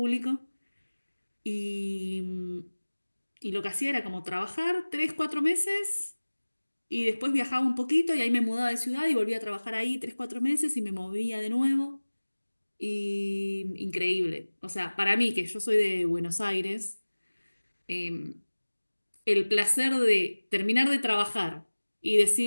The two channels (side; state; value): both; inverted; correlation -1.00